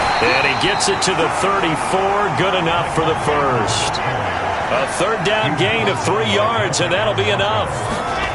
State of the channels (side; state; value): both; identical; correlation 1.00